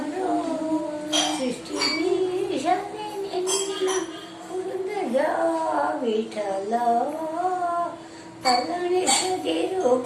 ಸೃಷ್ಟಿಗೀಶನೆ ನಿನ್ನ ಪುರಂದರ ವಿಠಲ ತಲ್ಲಣಿಸದಿರು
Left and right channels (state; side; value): identical; both; correlation 1.00